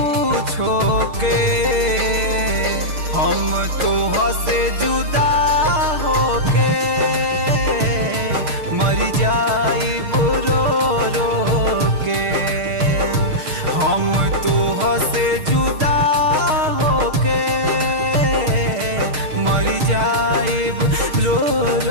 छोके हम तोह से जुदा होके मर जाइबू रो रो के हम तोह से जुदा होके मर जाइब रो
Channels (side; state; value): left; late; 6.5 ms